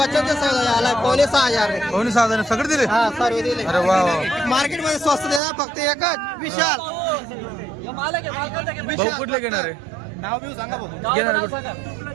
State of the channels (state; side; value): drops out; left; at 5.4 s